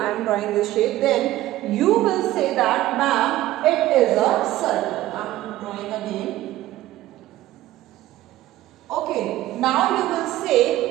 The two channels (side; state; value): left; quieter; 15.2 dB